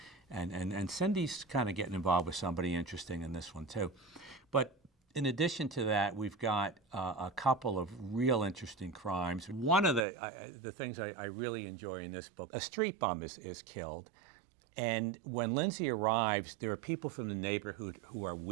and Cindy's kind of getting involved with somebody interesting in this one too. But in addition to that, we've got a couple of real interesting crimes. One of the things I really enjoy in this book, a street bum is killed. And when Lindsay arrives, there are people from the neighborhood who are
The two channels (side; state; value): left; drops out; at 10.1 s